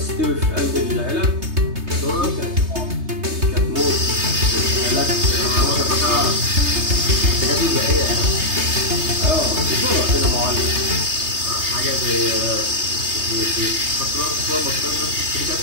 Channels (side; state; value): left; late; 3.3 ms